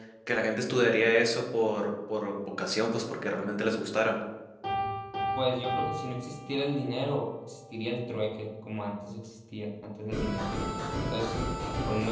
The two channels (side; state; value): both; identical; correlation 1.00